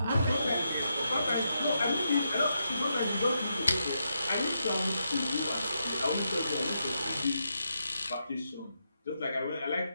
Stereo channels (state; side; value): inverted; both; correlation -0.83